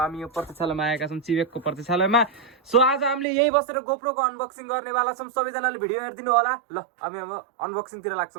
यो प्रतीक्षालयमा आएका छौँ, चिवेकको प्रतीक्षालयमा। सो आज हामीले यही बसेर गोप्रोको अनबक्सिङ गर्नेवाला छौँ। सबैजनाले भिडियो हेरिदिनु होला ल। हामी अब अनबक्सिङतिर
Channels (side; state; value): left; drops out; at 3.2 s